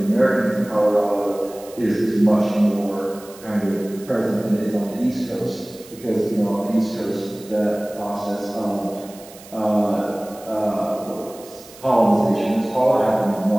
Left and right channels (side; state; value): right; noise; hiss, 20 dB below the sound